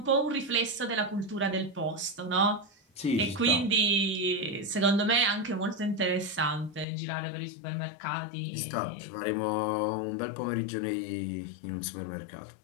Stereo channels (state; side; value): drops out; right; at 6.9 s